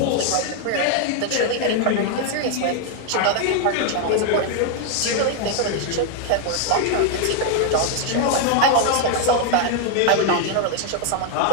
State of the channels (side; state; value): both; different; correlation 0.00